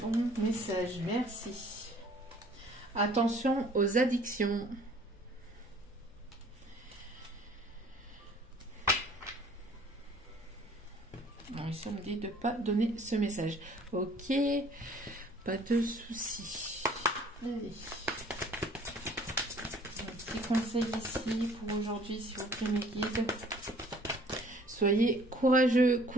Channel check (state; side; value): normal; both; correlation 0.54